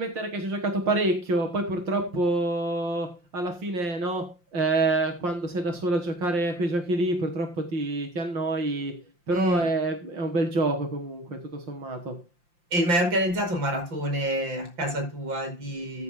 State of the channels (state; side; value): late; left; 5.8 ms